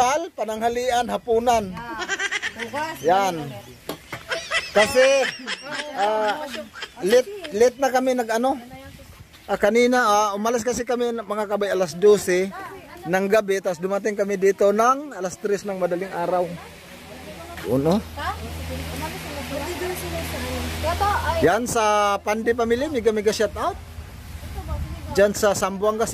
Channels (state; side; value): identical; both; correlation 1.00